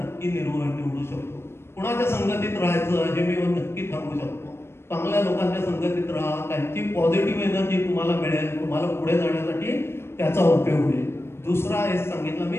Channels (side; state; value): right; late; 0.12 ms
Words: निवडू शकतो. कुणाच्या संगतीत राहायचं हे मी नक्की सांगू शकतो. चांगल्या लोकांच्या संगतीत राहा, त्यांची पॉझिटिव्ह एनर्जी तुम्हाला मिळेल, तुम्हाला पुढे जाण्यासाठी त्याचा उपयोग होईल. दुसरा हे सांगितलं मी,